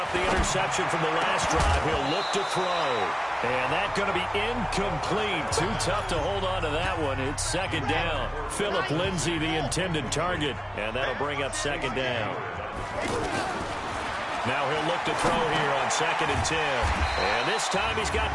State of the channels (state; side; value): identical; both; correlation 1.00